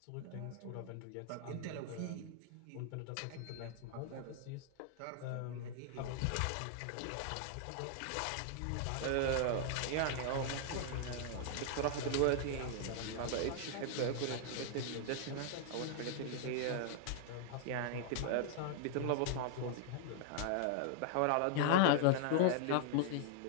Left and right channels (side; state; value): both; different; correlation -0.01